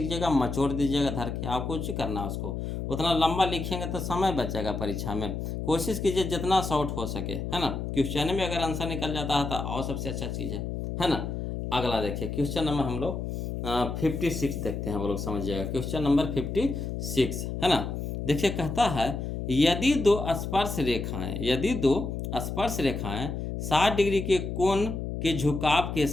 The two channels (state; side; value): noise; left; hum, 4 dB below the sound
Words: मचोड़ दीजिएगा धर के। आपको कुछ करना है उसको, उतना लंबा लिखेंगे तो समय बचेगा परीक्षा में। कोशिश कीजिए जितना शॉर्ट हो सके, है ना। क्वेश्चन में अगर आंसर निकल जाता है तो और सबसे अच्छा चीज़ है ना। अगला देखिए क्वेश्चन नंबर हम लोग 56 देखते हैं, वो लोग समझिएगा। क्वेश्चन नंबर 56 है ना। देखिए कहता है यदि दो स्पर्श रेखाएं 60 डिग्री के कोण के झुकाव के